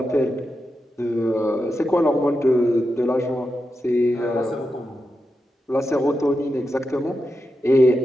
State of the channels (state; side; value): normal; both; correlation 0.88